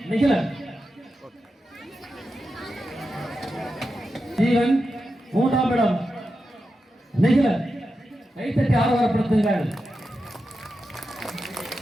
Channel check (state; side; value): normal; both; correlation 0.89